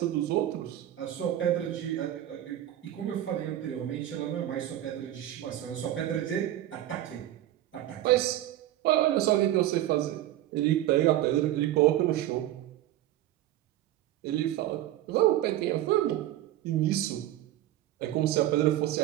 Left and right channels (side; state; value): left; quieter; 13.5 dB